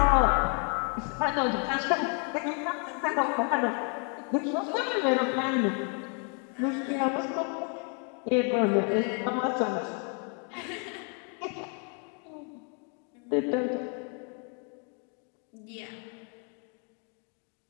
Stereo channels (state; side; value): quieter; right; 39.7 dB